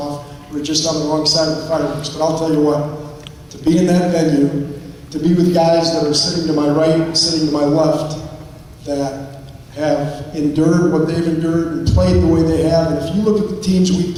We were just on the wrong side of the fireworks. But I'll tell you what, to be in that venue, to be with guys that are sitting to my right and sitting to my left, that have endured what they've endured and played the way they have. And if you look at the teams we've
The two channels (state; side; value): identical; both; correlation 1.00